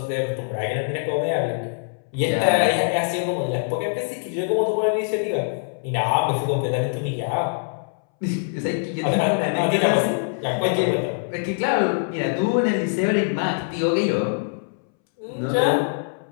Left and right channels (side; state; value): right; silent; 63 dB below the other